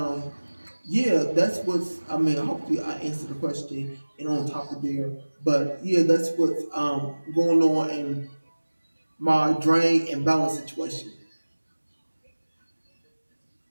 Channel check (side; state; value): both; inverted; correlation -1.00